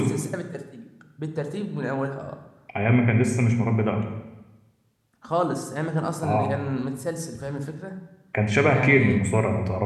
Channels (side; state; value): both; identical; correlation 1.00